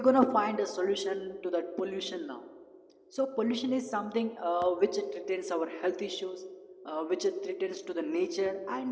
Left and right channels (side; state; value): both; identical; correlation 1.00